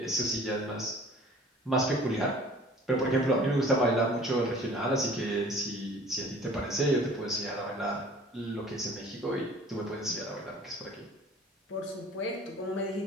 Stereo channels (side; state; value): both; normal; correlation 0.48